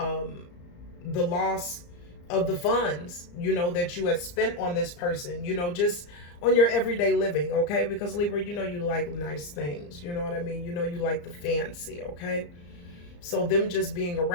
loss of the funds, that you had spent on this person, just on your everyday living, okay? Because Libra, you like nice things, you know what I mean? You like the fancy, okay? So them just being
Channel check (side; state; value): right; late; 34 ms